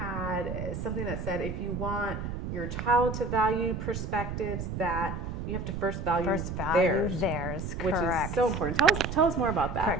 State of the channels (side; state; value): right; noise; rumble, 5 dB below the sound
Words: something that said, if you want your child to value perspectives, that you have to first value theirs, which is so important. Tell us more about that.